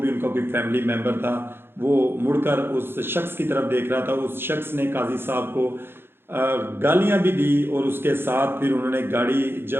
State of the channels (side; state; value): left; late; 0.11 ms